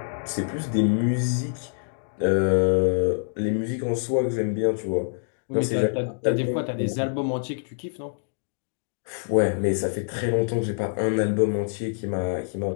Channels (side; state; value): right; silent; digital silence